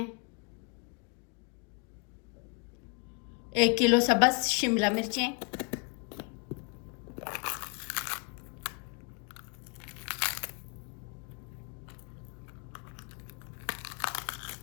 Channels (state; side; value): quieter; right; 31.5 dB